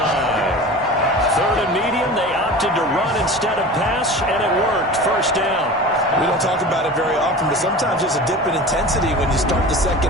3rd and medium, they opted to run instead of pass, and it worked. First down. We don't talk about it very often, but sometimes there's a dip in intensity when you start the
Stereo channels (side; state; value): both; normal; correlation 0.35